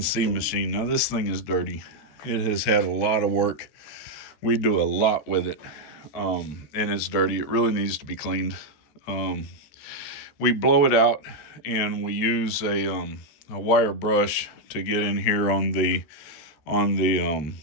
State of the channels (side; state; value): right; late; 13 ms